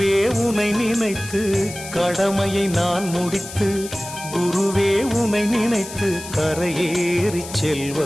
உனை நினைத்து, கடமையை நான் முடித்து குருவே உனை நினைத்து கரையேறி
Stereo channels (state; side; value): noise; left; hiss, 12 dB below the sound